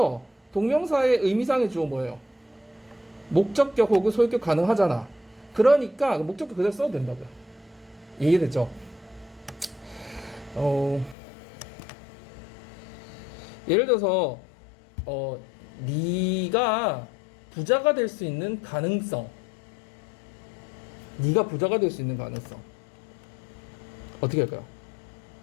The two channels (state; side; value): drops out; right; at 11.2 s